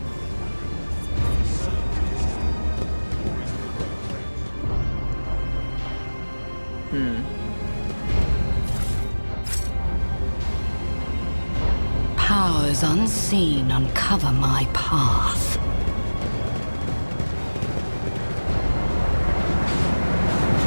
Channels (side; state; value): both; inverted; correlation -1.00